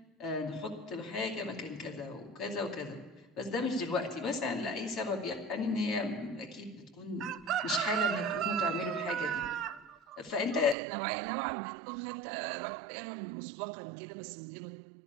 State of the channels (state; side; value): drops out; left; at 10.8 s